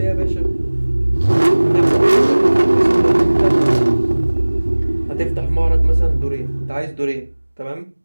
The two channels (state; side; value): inverted; both; correlation -1.00